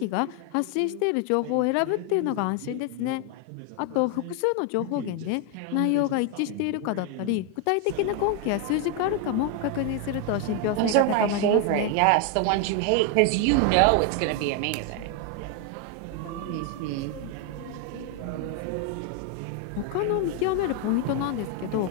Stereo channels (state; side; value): different; both; correlation 0.01